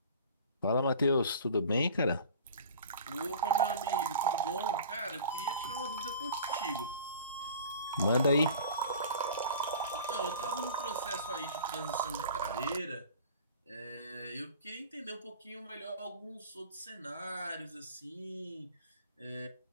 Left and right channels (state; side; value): inverted; both; correlation -0.42